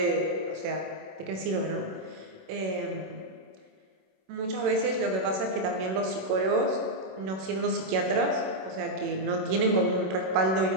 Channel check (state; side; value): late; left; 27 ms